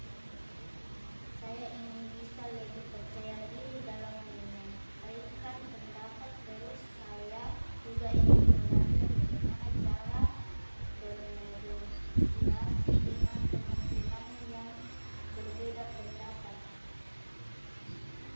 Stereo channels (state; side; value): inverted; both; correlation -1.00